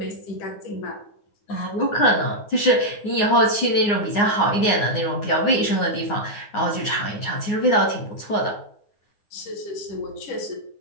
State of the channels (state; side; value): late; right; 9.6 ms